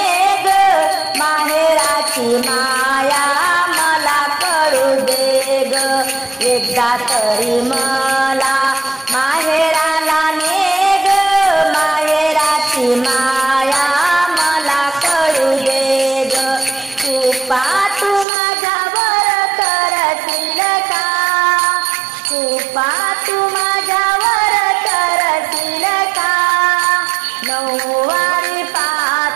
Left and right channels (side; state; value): left; drops out; at 18.2 s